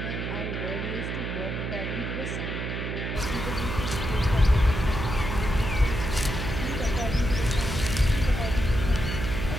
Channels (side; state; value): right; noise; hum, 3 dB below the sound